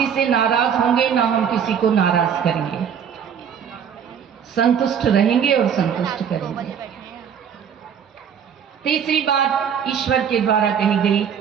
से नाराज होंगे, ना हम किसी को नाराज करेंगे। संतुष्ट रहेंगे और संतुष्ट करेंगे। तीसरी बात ईश्वर के द्वारा कही गई,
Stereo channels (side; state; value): left; quieter; 7.9 dB